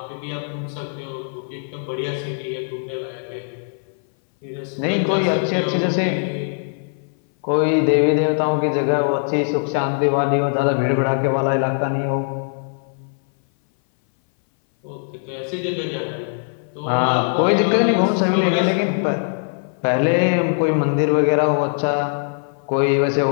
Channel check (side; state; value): right; silent; 60 dB below the other